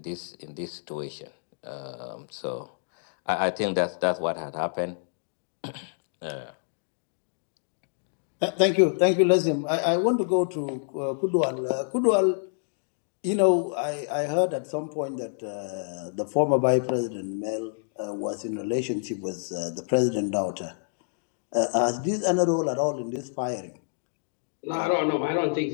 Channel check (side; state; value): right; silent; digital silence